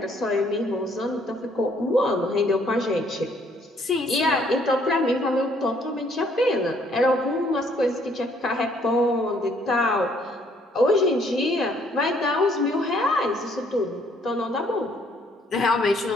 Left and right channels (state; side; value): normal; both; correlation 0.65